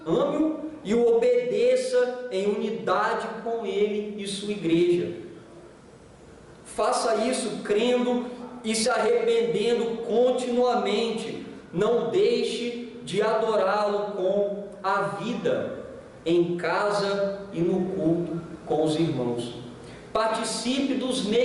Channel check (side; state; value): both; identical; correlation 1.00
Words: e o obedeça em unidade com Ele e sua igreja. Faça isso crendo e se arrependendo continuamente. Não deixe de adorá-lo com a vida, em casa e no culto com os irmãos. Participe dos